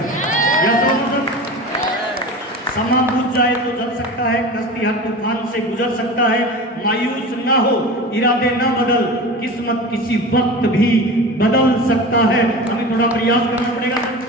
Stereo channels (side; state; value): both; normal; correlation 0.32